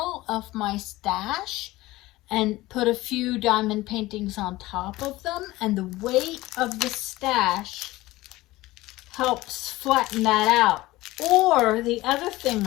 of my stash and put a few diamond paintings on top of them, and the weight of the stash helps flatten that out. Or the other thing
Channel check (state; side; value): quieter; right; 18.4 dB